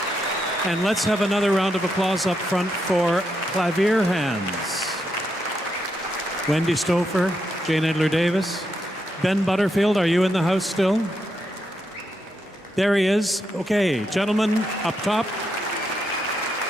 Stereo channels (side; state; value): both; normal; correlation 0.81